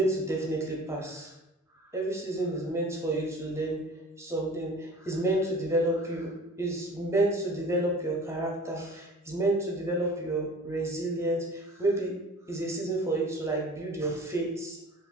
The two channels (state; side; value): normal; both; correlation 0.43